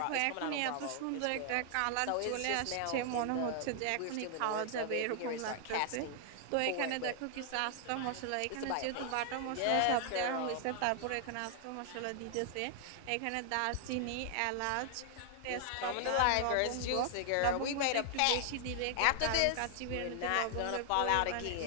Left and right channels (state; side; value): different; both; correlation 0.00